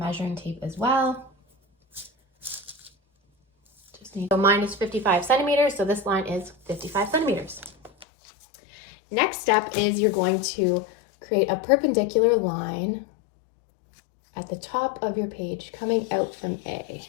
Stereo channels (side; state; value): right; drops out; at 8.1 s